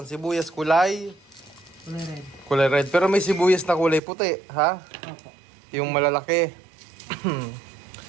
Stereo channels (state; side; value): drops out; left; at 4.0 s